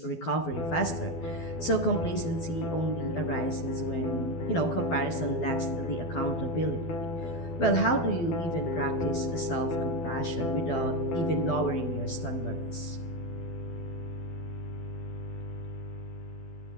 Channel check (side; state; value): right; late; 12 ms